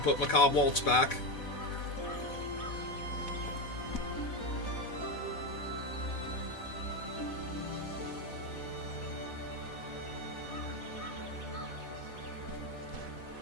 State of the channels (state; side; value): late; right; 4.1 ms